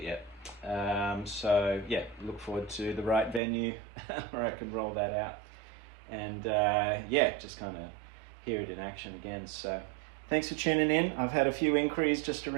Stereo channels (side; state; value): left; drops out; at 3.4 s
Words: yet. So yeah, look forward to the right venue where I can roll that out, and yeah, just kind of hear it in action again. So thanks for tuning in. I've had a few inquiries just